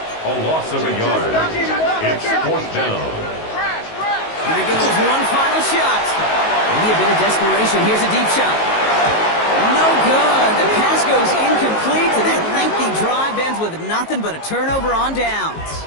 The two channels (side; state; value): right; late; 19 ms